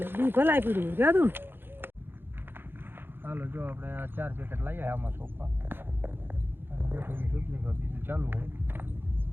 લે બી ભલાઈ પીડ્યું જાદું. હાલો જો આપણે 4 પેકેટ લાવ્યા આમાં સોંપવા બીજું ચાલુ હોય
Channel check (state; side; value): late; left; 0.10 ms